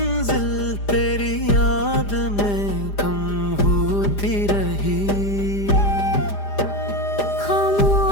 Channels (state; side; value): late; right; 4.9 ms